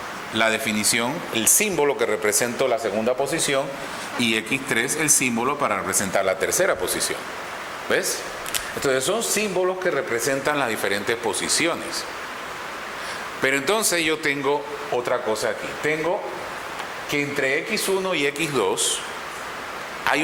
la definición, el símbolo que representa la segunda posición, y X3 el símbolo para representar la tercera posición. ¿Ves? Entonces son símbolos que representan las diferentes posiciones. Pero entonces yo tengo otra cosa aquí. Tengo que entre X1 y X2 hay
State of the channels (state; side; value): identical; both; correlation 1.00